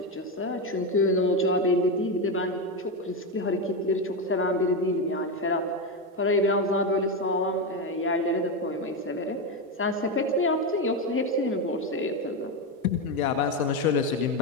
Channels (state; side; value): normal; both; correlation 0.11